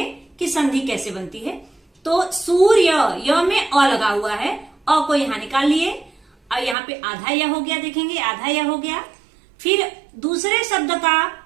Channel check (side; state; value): left; drops out; at 6.8 s